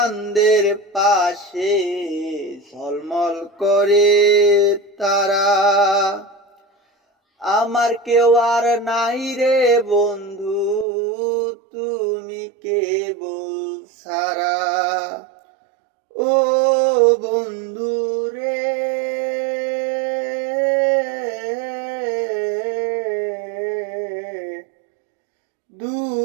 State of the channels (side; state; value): left; drops out; at 10.9 s